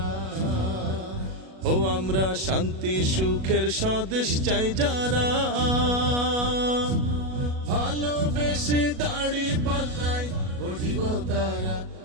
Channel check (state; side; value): late; left; 37 ms